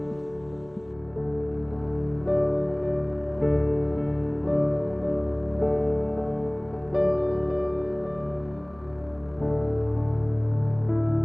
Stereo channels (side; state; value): right; noise; hum, 29 dB below the sound